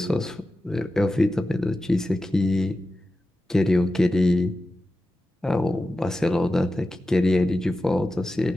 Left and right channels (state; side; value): normal; both; correlation 0.93